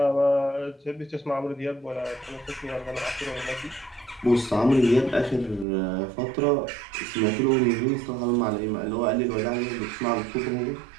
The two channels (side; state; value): left; drops out; at 5.7 s